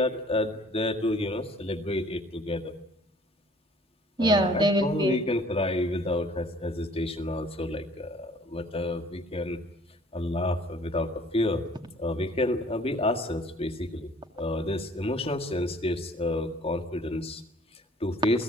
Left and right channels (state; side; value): normal; both; correlation 0.55